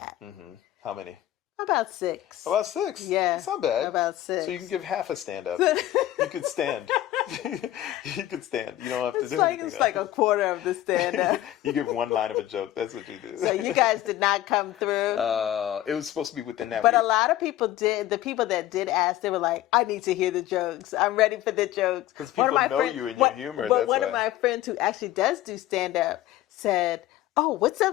Mm-hmm. How many? About 6. About 6? Yeah. It's not bad. About 6. So you can give half a stand-up. You could stand. You could stand. You don't have to do anything. It's like a quarter of the stand-up. You give one line of a joke. That's what you do. So you guys did not come through. It was supposed to be within that But week. a lot of people did. The people that did ask, they were like, I need to hear the jokes. I'm ready for the jokes. Because people know you and your humor. But That's one why. of my friends who actually does do stand-up said, oh, what's up?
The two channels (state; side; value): quieter; right; 14.0 dB